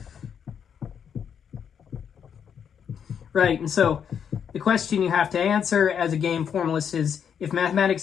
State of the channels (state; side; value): quieter; right; 7.8 dB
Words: Right, and so the question you have to answer as a game formalist is, if